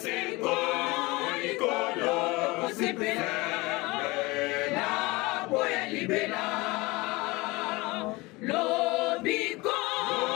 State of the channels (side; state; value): right; quieter; 23.0 dB